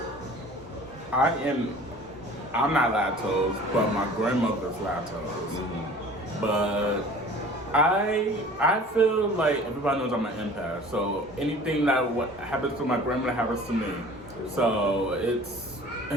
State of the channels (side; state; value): both; normal; correlation 0.45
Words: I'm not lactose, but my grandmother's lactose. But I feel like everybody knows I'm an empath, so anything that what happens to my grandmother happens to me. So it's